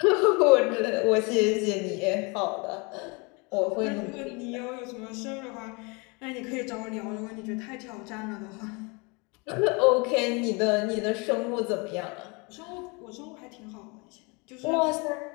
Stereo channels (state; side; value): quieter; right; 29.7 dB